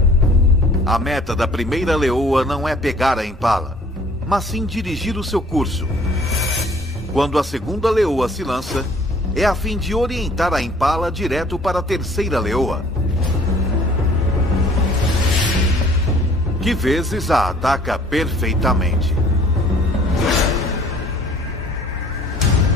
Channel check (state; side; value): normal; both; correlation 0.55